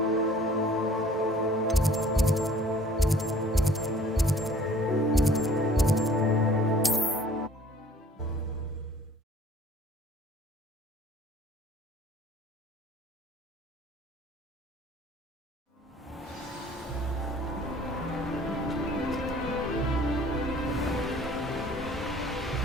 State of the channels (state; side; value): normal; both; correlation 0.53